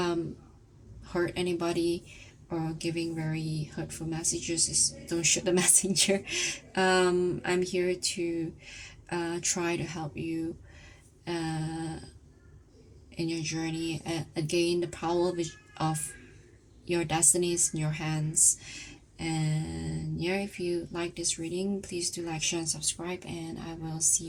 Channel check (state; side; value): identical; both; correlation 1.00